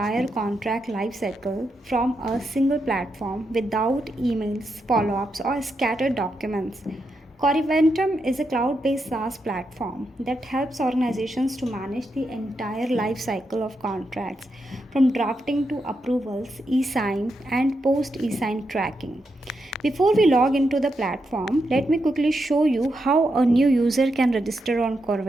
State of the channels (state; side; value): normal; both; correlation 0.84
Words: contract lifecycle from a single platform without emails, follow-ups or scattered documents. Coreventum is a cloud-based SaaS platform that helps organizations to manage the entire life cycle of contracts, from drafting to approvals, e-sign, and post-e-sign tracking. Before we log into the platform, let me quickly show you how a new user can register on